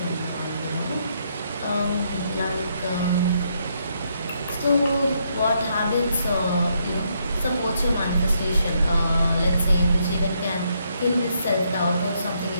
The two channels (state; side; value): inverted; both; correlation -0.75